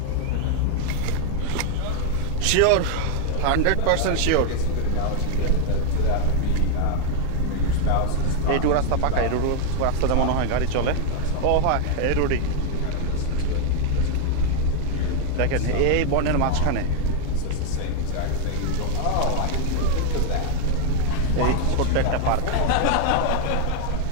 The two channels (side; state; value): both; different; correlation 0.01